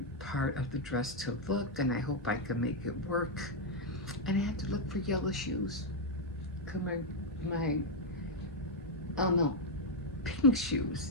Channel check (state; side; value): normal; both; correlation -0.01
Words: part of the dress to look, and I hope I can make it work. And I have to look for yellow shoes. Cause my oh no, pink